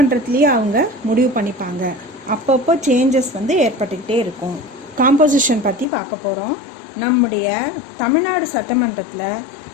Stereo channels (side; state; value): right; drops out; at 5.9 s